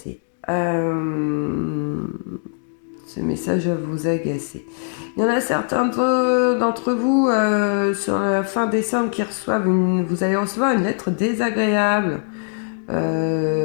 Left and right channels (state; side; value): silent; right; digital silence